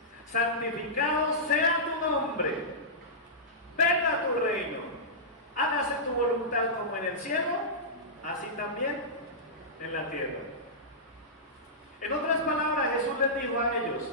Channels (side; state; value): both; normal; correlation -0.15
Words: santificado sea tu nombre, venga tu reino, hágase tu voluntad como en el cielo, así también en la tierra. En otras palabras, Jesús les dijo a